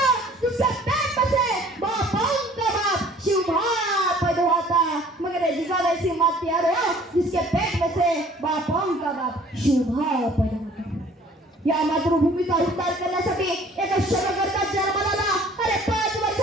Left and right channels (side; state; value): both; normal; correlation 0.53